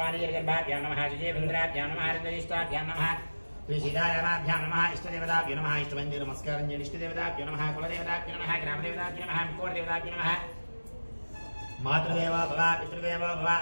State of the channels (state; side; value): inverted; both; correlation -1.00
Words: వాణీర్గర్భాభ్యాం నమః సుజేంద్రాభ్యాం నమః హరితరిష్టాభ్యాం నమః శ్రీ సీతారామాభ్యాం నమః ఇష్టదేవతాభ్యో నమః ఇష్టవందే నమస్కారం చేయండి ఇష్టదేవతాభ్యో నమః కులదేవతాభ్యో నమః గ్రామదేవతాభ్యో నమః కోటదేవతాభ్యో నమః మాతృదేవో భవ పితృదేవో భవ